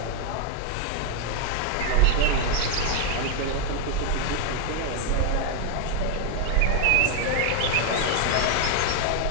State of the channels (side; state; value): both; different; correlation 0.00